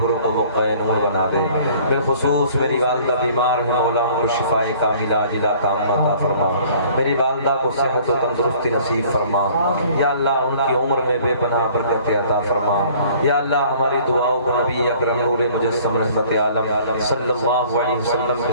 کو بقعہ نور بنا دے۔ بالخصوص میری والدہ بیمار ہے، مولا ان کو شفائے کاملہ عاجلہ تامہ عطا فرما۔ میری والدہ کو صحت و تندرستی نصیب فرما۔ یا اللہ ان کی عمر میں بے پناہ برکت عطا فرما۔ یا اللہ ہماری دعاؤں کو نبی اکرم نور مجسم رحمت عالم صلی اللہ علیہ وسلم کے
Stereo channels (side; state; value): both; inverted; correlation -0.53